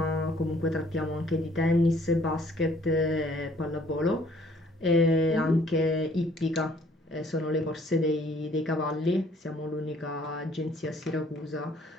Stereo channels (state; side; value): normal; both; correlation 0.60